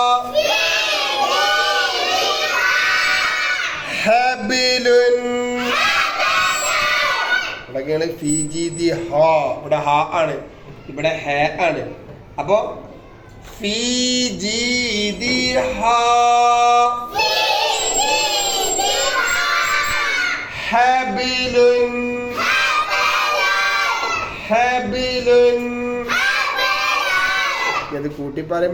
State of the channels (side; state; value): both; identical; correlation 1.00